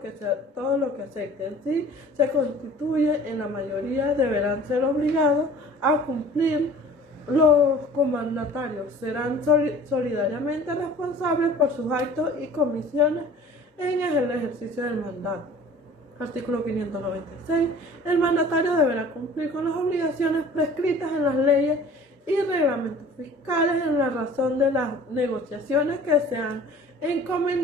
acepten. Si se constituye en la mayoría, deberán ser obligados a cumplir. Los comandatarios serán solidariamente responsables por sus actos y comisiones en el ejercicio del mandato. Artículo 596. El mandatario deberá cumplir con las obligaciones prescritas en las leyes y reglamentos fiscales en la razón de las negociaciones que se han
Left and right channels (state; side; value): normal; both; correlation 0.46